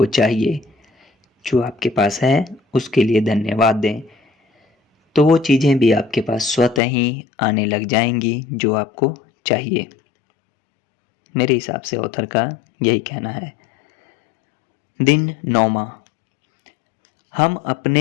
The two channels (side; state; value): right; drops out; at 6.8 s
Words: चाहिए, जो आपके पास है उसके लिए धन्यवाद दें, तो वो चीज़ें भी आपके पास स्वतः ही आने लग जाएंगी जो आपको चाहिए। मेरे हिसाब से ऑथर का यही कहना है। दिन 9वां, हम